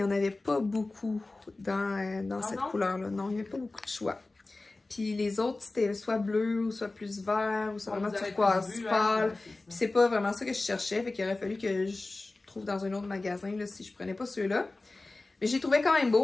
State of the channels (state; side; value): quieter; right; 3.2 dB